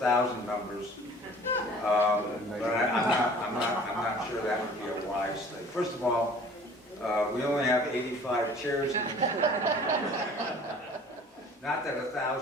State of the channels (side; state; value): both; normal; correlation 0.48